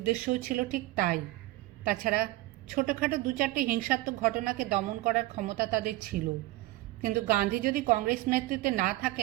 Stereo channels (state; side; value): quieter; left; 18.0 dB